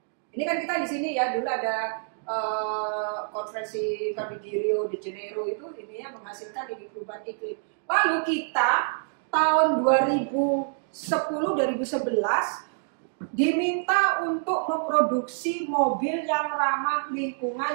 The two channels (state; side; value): silent; left; digital silence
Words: Ini kan kita di sini ya, dulu ada konferensi kami di Rio de Janeiro itu ini ya menghasilkan ini perubahan iklim. Lalu kita tahun 2010-2011 diminta untuk memproduksi mobil yang ramah